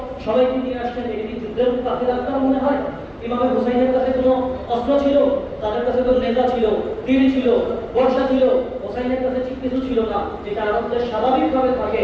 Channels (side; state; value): both; identical; correlation 1.00